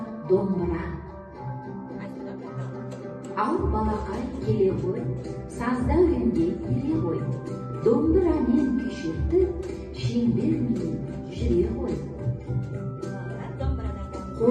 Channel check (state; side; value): identical; both; correlation 1.00